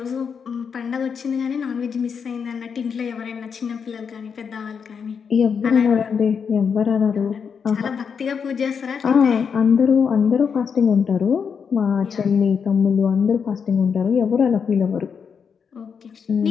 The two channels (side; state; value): right; quieter; 6.5 dB